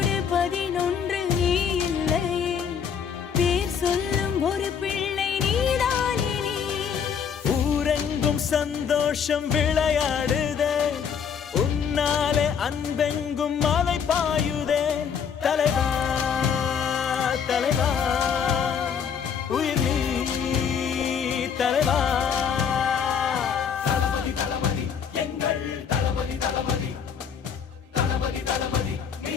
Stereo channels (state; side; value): quieter; right; 7.2 dB